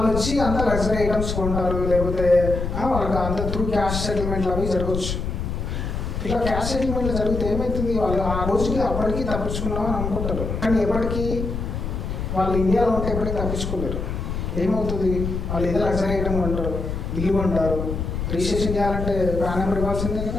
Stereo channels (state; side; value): noise; left; rumble, 4 dB below the sound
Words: వచ్చి అంత లగ్జరీ ఐటమ్స్ కొంటారు, లేకపోతే వాళ్ళకి అంత త్రూ క్యాష్ సెటిల్మెంట్లు అవి జరగవచ్చు. ఇట్లా క్యాష్ సెటిల్మెంట్లు జరిగితే ఏమవుతుంది, వాళ్ళు ఆ రోజుకి అప్పటికి తప్పించుకున్నామని అనుకుంటారు. కానీ ఎప్పటికీ వాళ్ళు ఇండియాలో ఉంటే ఎప్పటికీ తప్పించుకోలేరు. ఏమవుతుంది, వాళ్ళు ఏదో లగ్జరీ ఐటమ్ కొంటారు, ఇల్లు కొంటారు, రిజిస్ట్రేషన్ చేయాలంటే పాన్ నెంబర్ ఇవ్వాల్సిందే